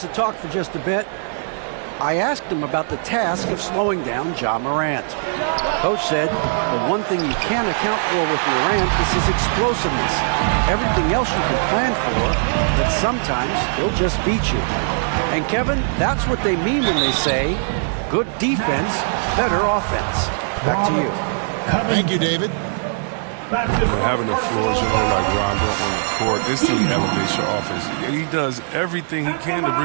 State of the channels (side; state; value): left; silent; digital silence